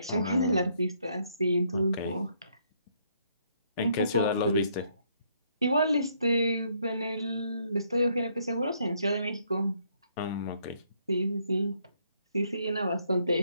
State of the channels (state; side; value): inverted; both; correlation -0.70